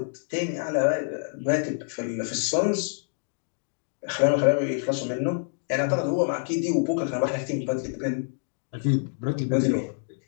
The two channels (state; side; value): silent; right; digital silence